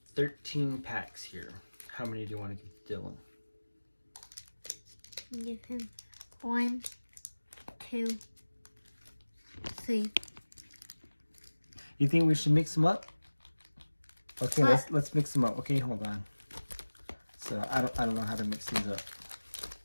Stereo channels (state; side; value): inverted; both; correlation -1.00